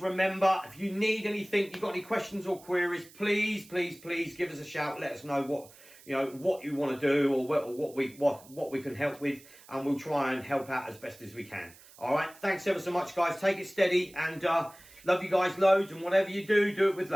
remember, if you need anything, you've got any questions or queries, please give us a shout. Let us know what you want to do, or what we can help with, and we'll try and help out as best as we can. All right. Thanks ever so much, guys. Take it steady, and love you guys loads. And whatever you do, do it with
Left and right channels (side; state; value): right; noise; hiss, 23 dB below the sound